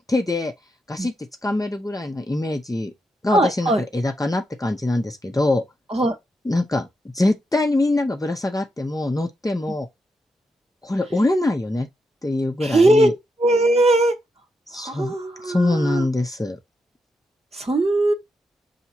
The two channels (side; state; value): both; normal; correlation 0.84